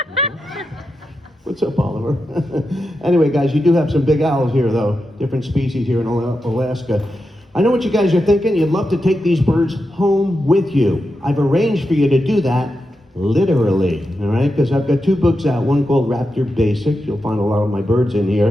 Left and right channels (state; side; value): normal; both; correlation 0.88